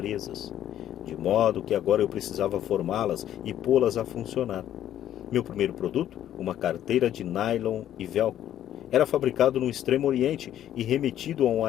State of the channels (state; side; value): quieter; right; 11.4 dB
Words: de modo que agora eu precisava formá-las e pô-las a funcionar. Meu primeiro produto, uma carteira de nylon e velcro, era fabricado no Extremo Oriente e remetido a um